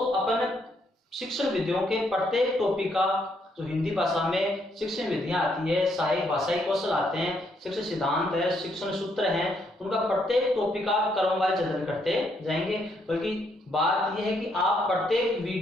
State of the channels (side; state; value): both; normal; correlation 0.73